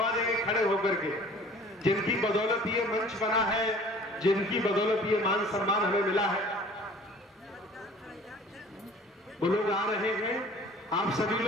देंगे खड़े होकर के, जिनकी बदौलत ये मंच बना है, जिनकी बदौलत ये मान सम्मान हमें मिला है। वो लोग आ रहे हैं, आप सभी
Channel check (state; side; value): normal; both; correlation 0.48